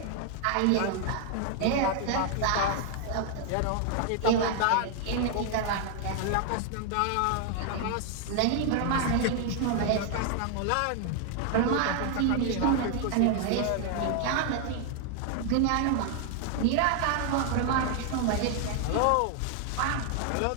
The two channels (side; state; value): both; different; correlation 0.00